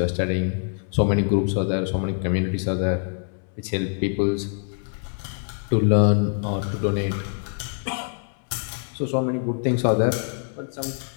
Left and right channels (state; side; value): silent; right; 62 dB below the other